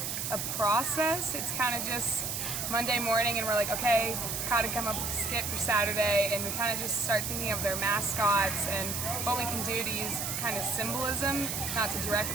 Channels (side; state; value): right; noise; hiss, 2 dB below the sound